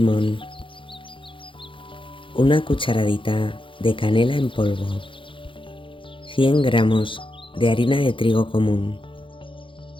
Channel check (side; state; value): right; late; 0.25 ms